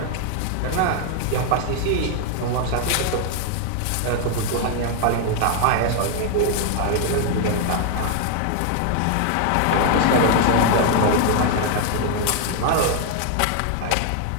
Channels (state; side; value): different; both; correlation 0.00